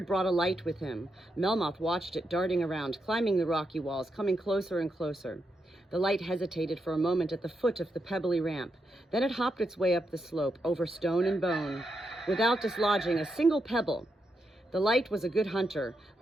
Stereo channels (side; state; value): both; normal; correlation 0.83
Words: brought a light with him. Melmoth watched it darting around, climbing the rocky walls, coming closer and closer. The light hesitated for a moment at the foot of the pebbly ramp. Then it hopped its way up the slope, over stone and bone, without dislodging a single pebble. The light was a good hunter,